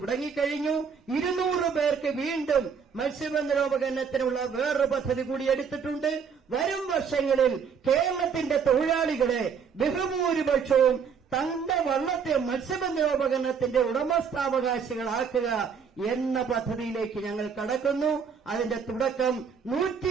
200 പേർക്ക് വീണ്ടും മത്സ്യബന്ധനോപകരണത്തിനുള്ള വേറൊരു പദ്ധതി കൂടി എടുത്തിട്ടുണ്ട്. വരും വർഷങ്ങളിൽ കേരളത്തിന്റെ തൊഴിലാളികളെ ബഹുഭൂരിപക്ഷവും തന്റെ വള്ളത്തെ മത്സ്യബന്ധനോപകരണത്തിന്റെ ഉടമസ്ഥാവകാശികളാക്കുക എന്ന പദ്ധതിയിലേക്ക് ഞങ്ങൾ കടക്കുന്നു. അതിന്റെ തുടക്കം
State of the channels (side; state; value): left; quieter; 6.5 dB